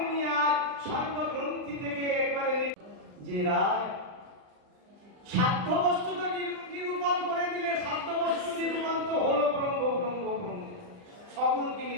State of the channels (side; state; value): left; late; 39 ms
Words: উনি আজ সর্বগ্রন্থি থেকে একবারে যে রায় সাধ্য বস্তু তো নিরূপণ করে দিলে, সাধ্য বস্তু নিরূপণ তো হলো ব্রহ্ম ব্রহ্ম ব্রহ্ম, সগুণকে